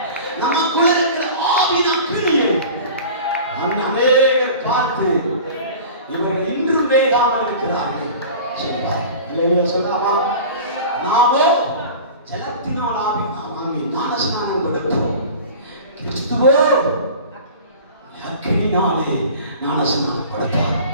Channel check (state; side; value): inverted; both; correlation -0.39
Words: நமக்குள்ள இருக்கிற ஆவின் அக்கினியை அநேகர் பார்த்து இவர்கள் இன்றும் வேகாமல் இருக்கிறார்கள் சொல்லுவார். இல்லையா சொல்லாமா? நாமோ ஜலத்தினால் வாங்கி ஞானஸ்நானம் கொடுப்போம். கிறிஸ்துவோ அக்கினினாலே ஞானஸ்நானம் கொடுப்பார்.